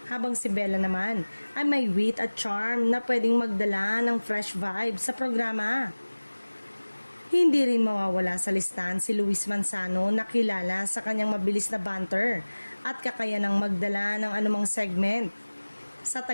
Habang si Bella naman ay may wit at charm na pwedeng magdala ng fresh vibe sa programa. Hindi rin mawawala sa listahan si Luis Manzano na kilala sa kanyang mabilis na banter at kakayanang magdala ng anumang segment. Sa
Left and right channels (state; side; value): inverted; both; correlation -1.00